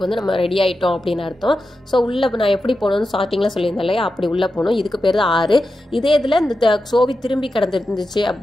வந்து நம்ம ரெடி ஆகிட்டோம் அப்படின்னு அர்த்தம். ஸோ உள்ளே நான் எப்படி போகணும்னு ஸ்டார்டிங்கில் சொல்லியிருந்தேன் இல்லையா, அப்படி உள்ளே போகணும். இதுக்கு பேர் தான் 6. இதே இதில் இந்த சோவி திரும்பி கிடந்துருந்துச்சு,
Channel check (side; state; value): both; normal; correlation 0.90